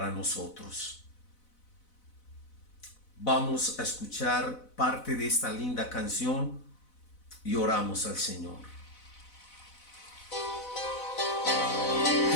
nosotros. Vamos a escuchar parte de esta linda canción y oramos al Señor.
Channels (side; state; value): right; late; 4.0 ms